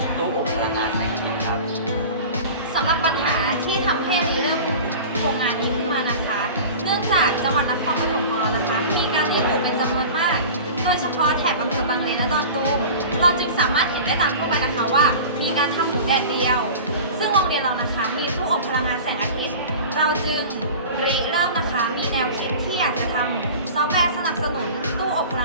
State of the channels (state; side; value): inverted; both; correlation -0.36